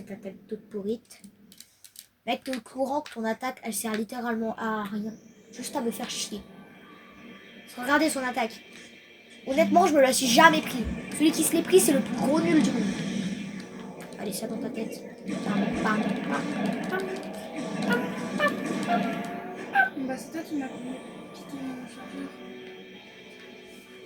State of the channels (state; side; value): identical; both; correlation 1.00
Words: attaque toute pourrite. Être au courant que ton attaque, elle sert littéralement à rien. Juste à me faire chier. Regardez son attaque. Honnêtement, je me la suis jamais pris. Celui qui se l'est pris, c'est le plus gros nul du monde. Allez, ça dans ta tête. Bah, c'est toi qui m'as piqué mon chargeur.